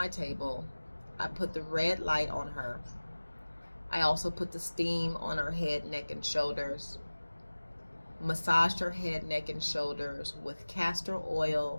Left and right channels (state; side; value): inverted; both; correlation -1.00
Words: table. I put the red light on her. I also put the steam on her head, neck, and shoulders. Massaged her head, neck, and shoulders with castor